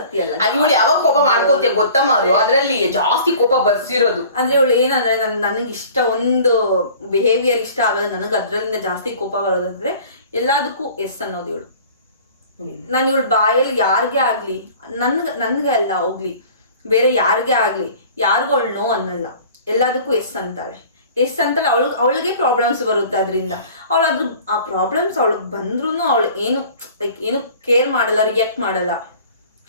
ಅಲ್ಲ. ಇವಳು ಯಾವಾಗ ಕೋಪ ಮಾಡ್ಕೋತೀಯ ಗೊತ್ತಮ್ಮ, ಅದು ಅದ್ರಲ್ಲಿ ಜಾಸ್ತಿ ಕೋಪ ಬರ್ಸಿರೋದು. ಅಂದ್ರೆ ಇವಳು ಏನಂದ್ರೆ ನನಗೆ ಇಷ್ಟ ಒಂದು ಬಿಹೇವಿಯರ್ ಇಷ್ಟ ಆಗಲ್ಲ, ನನಗೆ ಅದ್ರಲ್ಲಿಂದ ಜಾಸ್ತಿ ಕೋಪ ಬರೋದಂದ್ರೆ ಎಲ್ಲದಕ್ಕೂ ಎಸ್ ಅನ್ನೋದು ಇವಳು. ನಾನು ಇವಳು ಬಾಯಲ್ಲಿ ಯಾರಿಗೇ ಆಗ್ಲಿ, ನನ್ಗೆ ಅಲ್ಲ ಹೋಗ್ಲಿ, ಬೇರೆ ಯಾರಿಗೇ ಆಗ್ಲಿ, ಯಾರಿಗೂ ಅವಳು ನೋ ಅನ್ನಲ್ಲ, ಎಲ್ಲದಕ್ಕೂ ಎಸ್ ಅಂತಾಳೆ. ಎಸ್ ಅಂತಲ್ಲ, ಅವಳಿಗೆ ಪ್ರಾಬ್ಲಮ್ಸ್ ಬರುತ್ತೆ ಅದರಿಂದ. ಅವಳು ಆ ಪ್ರಾಬ್ಲಮ್ಸ್ ಅವಳಿಗೆ ಬಂದ್ರೂ ಅವಳು ಏನು ಕೇರ್ ಮಾಡಲ್ಲ, ರಿಯಾಕ್ಟ್ ಮಾಡಲ್ಲ.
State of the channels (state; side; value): inverted; both; correlation -0.47